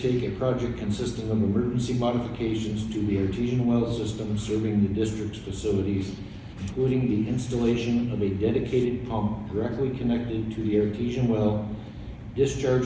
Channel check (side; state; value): both; identical; correlation 1.00